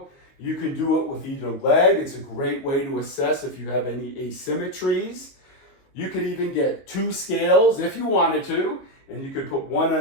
You can do it with either leg. It's a great way to assess if you have any asymmetries. You could even get 2 scales if you wanted to, and you could put one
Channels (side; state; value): right; late; 22 ms